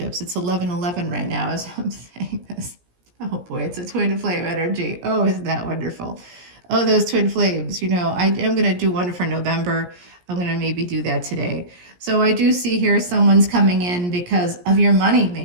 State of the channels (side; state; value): left; late; 17 ms